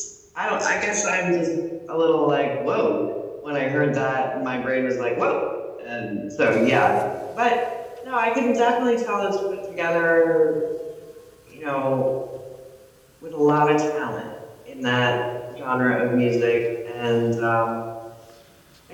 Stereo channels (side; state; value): both; identical; correlation 1.00